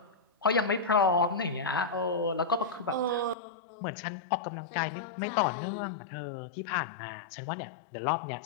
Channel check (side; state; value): right; drops out; at 3.4 s